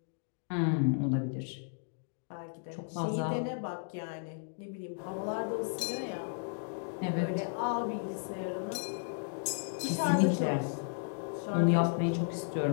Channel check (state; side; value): silent; right; digital silence